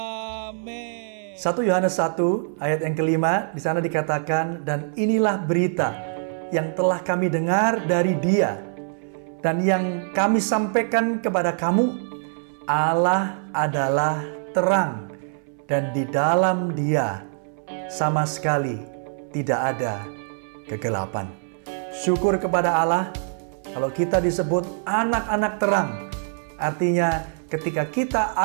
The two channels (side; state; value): left; silent; 63 dB below the other